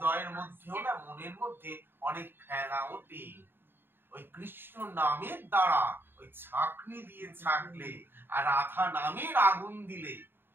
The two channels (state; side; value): late; left; 0.10 ms